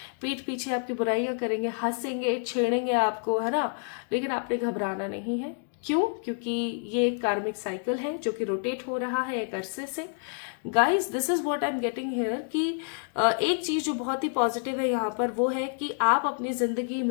पीठ पीछे आपकी बुराइयां करेंगे, हंसेंगे, छेड़ेंगे आपको, है ना। लेकिन आपने घबराना नहीं है। क्यों? क्योंकि ये एक कार्मिक साइकिल है जो कि रोटेट हो रहा है एक अरसे से। Guys this is what I am getting here कि एक चीज जो बहुत ही पॉजिटिव है यहाँ पर वो है कि आप अपनी जिंदगी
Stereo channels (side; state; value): right; silent; 59 dB below the other